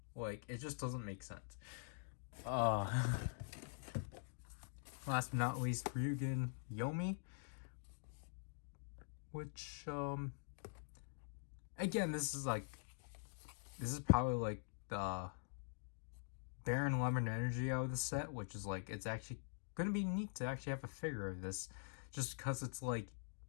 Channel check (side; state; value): right; silent; digital silence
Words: Like, it just doesn't make sense. Last but not least, Ryugen Yomi, which, again, this is probably, like, the Baron Lemon Energy out of the set, which is, like, it's actually gonna be neat to actually have a figure of this, just because it's, like,